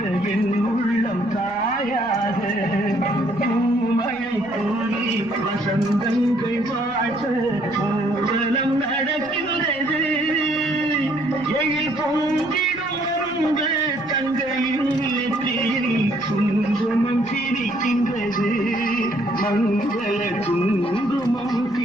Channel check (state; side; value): noise; right; rumble, 25 dB below the sound